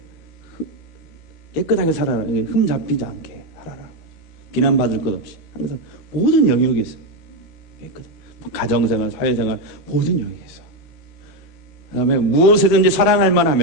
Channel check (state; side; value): late; right; 13 ms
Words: 깨끗하게 살아라. 흠 잡히지 않게 살아라. 비난받을 것 없이 항상 모든 영역에서 깨끗. 가정생활, 사회생활 모든 영역에서. 그다음에 무엇에든지 사랑할